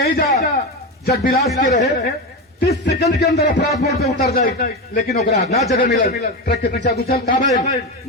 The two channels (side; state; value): both; normal; correlation 0.17